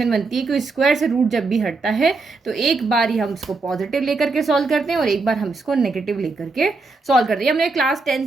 बनती है कि स्क्वायर से रूट जब भी हटता है तो एक बार ही हम इसको पॉजिटिव लेकर के सॉल्व करते हैं और एक बार हम इसको नेगेटिव लेकर के सॉल्व करते हैं। हमने क्लास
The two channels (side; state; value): left; quieter; 3.8 dB